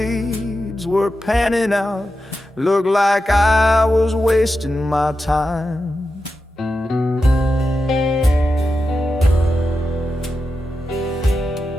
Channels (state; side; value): normal; both; correlation 0.90